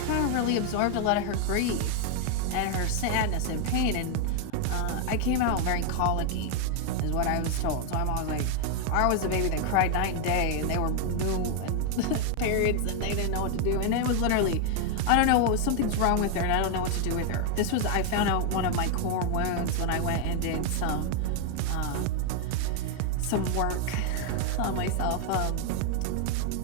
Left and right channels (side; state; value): both; different; correlation 0.00